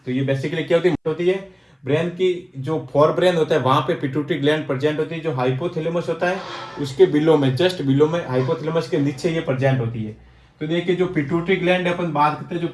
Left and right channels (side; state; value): both; identical; correlation 1.00